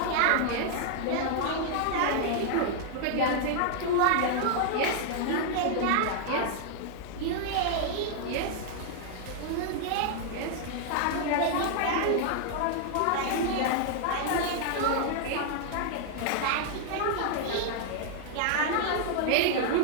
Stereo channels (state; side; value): different; both; correlation -0.01